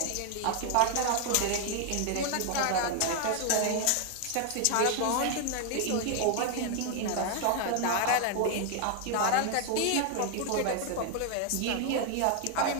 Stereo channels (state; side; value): different; both; correlation 0.00